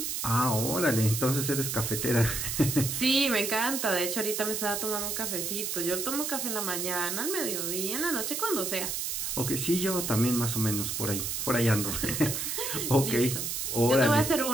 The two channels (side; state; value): right; noise; hiss, 2 dB below the sound